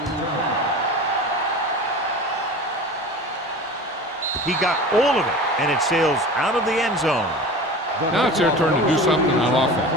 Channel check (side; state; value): both; normal; correlation 0.35